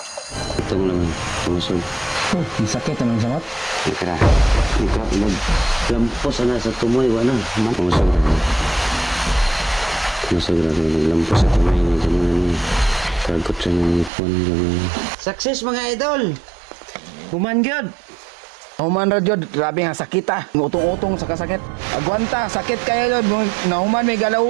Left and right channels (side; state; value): left; drops out; at 14.1 s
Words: Itong naman, pumusog. Sakit naman sa mat. Ika, naglampos na sa tumoy, wala. Pumusog na. Naglampos sa tumoy ni Jaman. Kagot sa nipon. Success mga idol! Humanggod! Human ra jud, grabe nga sakit ah. Utong-utong sa kasakit. Agwanta, sakit kaya jud. Nahuman may